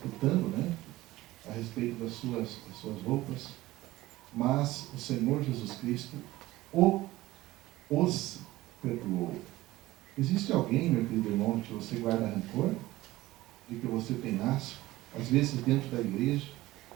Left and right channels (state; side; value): quieter; left; 17.6 dB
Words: né, a respeito das suas roupas, mas o Senhor Jesus Cristo os perdoou. Existe alguém, meu querido irmão, que você guarda rancor? De que você tem asco? Às vezes dentro da igreja,